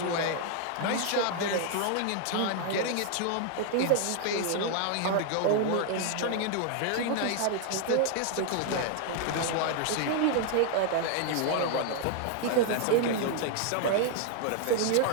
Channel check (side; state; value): both; different; correlation 0.00